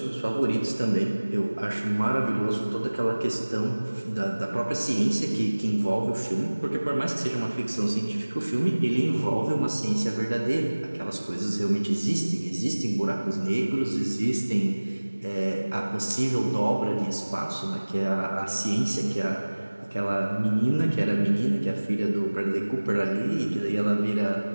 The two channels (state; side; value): inverted; both; correlation -1.00